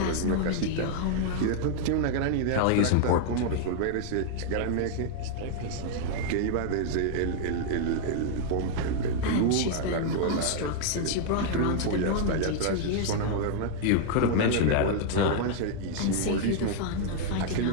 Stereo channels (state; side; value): different; both; correlation -0.01